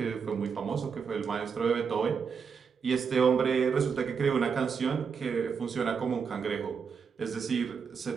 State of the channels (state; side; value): quieter; left; 6.1 dB